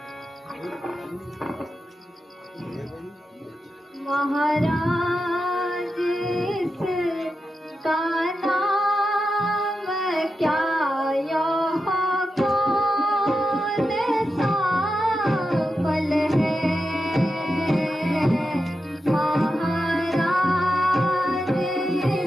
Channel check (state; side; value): normal; both; correlation 0.89